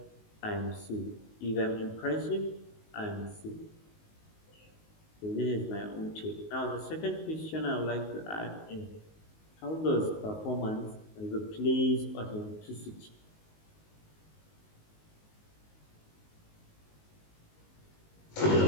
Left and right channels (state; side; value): late; right; 19 ms